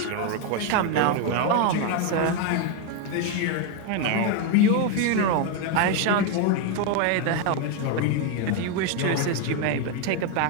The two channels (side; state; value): both; different; correlation 0.01